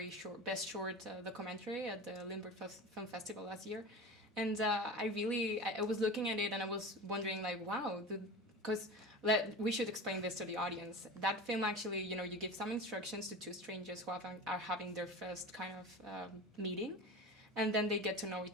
Best Short Documentary at the Limburg Film Festival last year. And I was looking at it and I was wondering like, wow, because we should explain this to the audience. That film actually, you give some instructions to two strangers who are having their first kind of meeting, and then they get to know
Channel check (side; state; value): both; normal; correlation 0.31